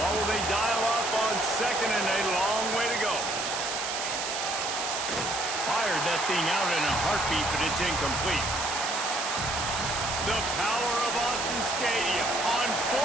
will they dial up on 2nd and a long way to go? Fired that thing out in a heartbeat, but it's incomplete. The power of Autzen Stadium on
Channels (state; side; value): noise; right; hiss, 2 dB below the sound